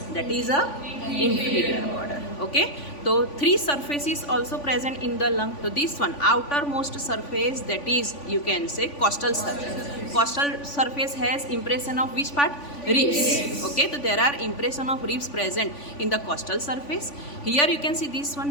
that is a inferior border. Okay, so three surfaces also present in the lung. So this one outermost surface, that is you can say costal surface. Costal surface has impression of which part? Ribs. Okay, so there are impression of ribs present in the costal surface. Here you can see this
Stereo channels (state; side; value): late; right; 3.5 ms